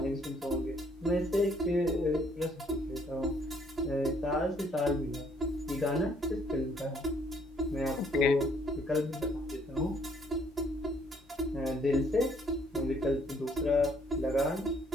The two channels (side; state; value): both; normal; correlation 0.65